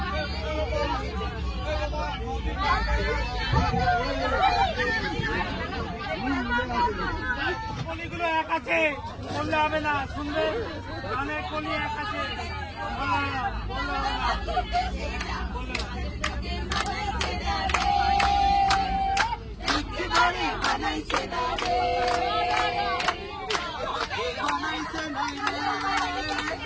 কলিগুলো এক আছে, বললে হবে না, শুনবে অনেক কলি এক আছে, বললে হবে না, বললে হবে না, বললে হবে তোকে মানাইছে নাই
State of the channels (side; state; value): both; identical; correlation 1.00